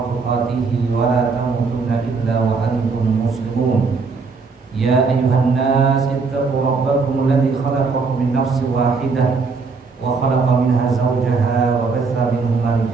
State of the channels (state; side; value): quieter; left; 4.6 dB